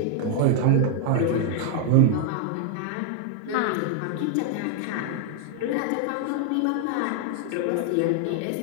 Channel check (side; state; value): both; different; correlation 0.00